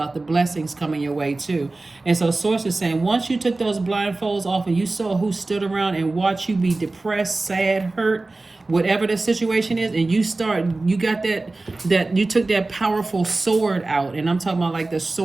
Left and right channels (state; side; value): quieter; left; 3.2 dB